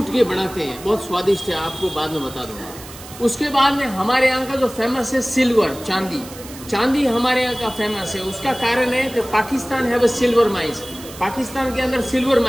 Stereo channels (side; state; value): right; noise; hiss, 16 dB below the sound